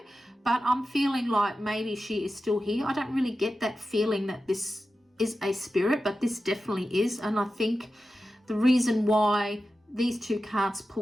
But I'm feeling like maybe she is still here. I don't really get that feeling that this is a spirit, but this definitely is. And I think the reason why these two cards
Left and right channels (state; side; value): normal; both; correlation 0.92